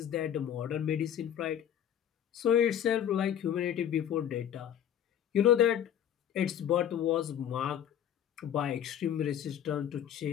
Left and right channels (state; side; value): quieter; right; 9.9 dB